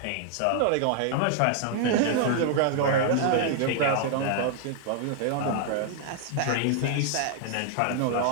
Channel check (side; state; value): both; different; correlation 0.00